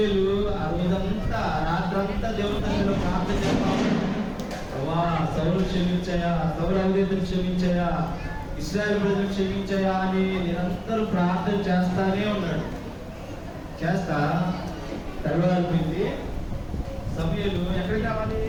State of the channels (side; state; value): both; identical; correlation 1.00